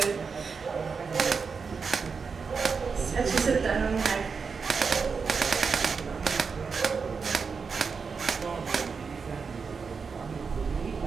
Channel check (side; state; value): left; quieter; 5.3 dB